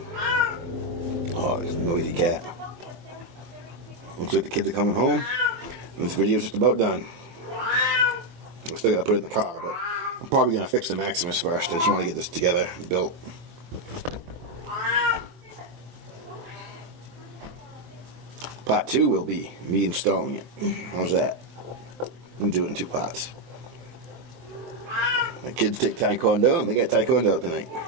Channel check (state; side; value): late; left; 24 ms